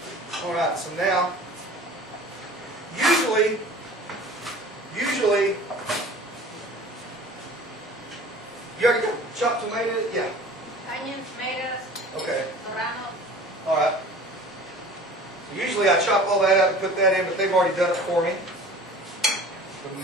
All right, so now, usually, you already got chopped tomatoes? Yeah. Onions, tomatoes, Okay. Poblano. All right. So usually I chop all that out and put that in, but they've already done it for me. The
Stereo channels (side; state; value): both; normal; correlation 0.43